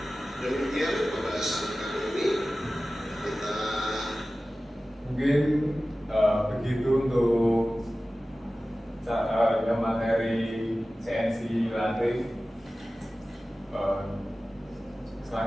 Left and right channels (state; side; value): normal; both; correlation 0.96